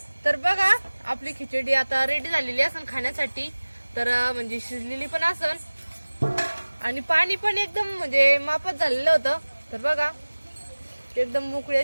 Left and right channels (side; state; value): both; inverted; correlation -1.00